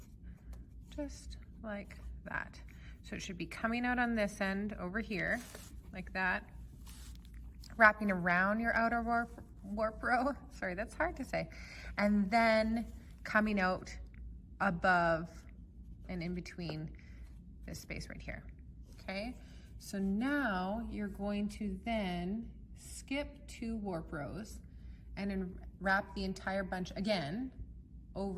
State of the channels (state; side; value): identical; both; correlation 1.00